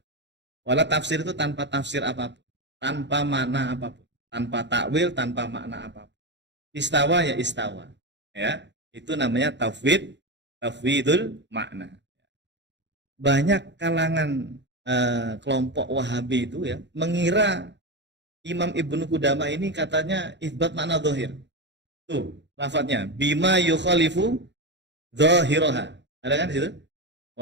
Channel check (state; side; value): late; left; 0.52 ms